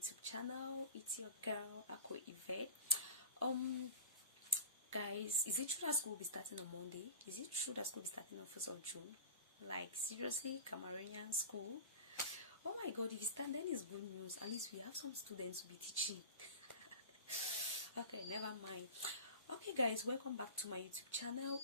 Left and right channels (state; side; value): inverted; both; correlation -0.34